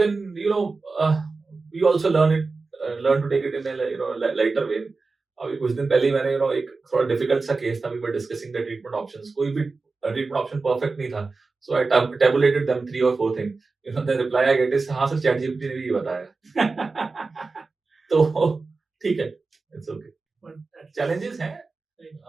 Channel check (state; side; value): quieter; left; 4.0 dB